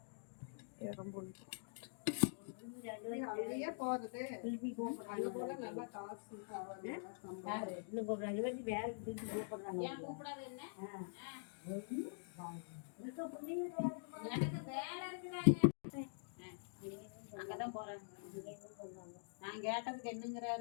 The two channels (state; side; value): silent; right; digital silence